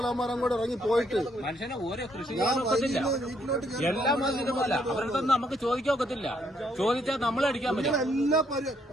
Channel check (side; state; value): both; normal; correlation 0.71